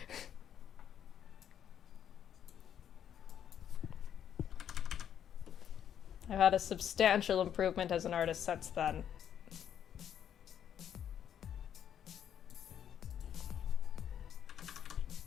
I've had a substantial improvement as an artist since then.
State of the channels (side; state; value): right; quieter; 9.3 dB